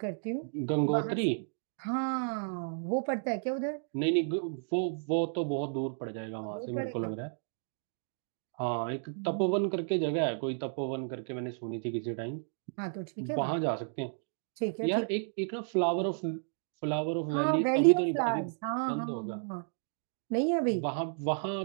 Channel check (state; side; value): silent; left; digital silence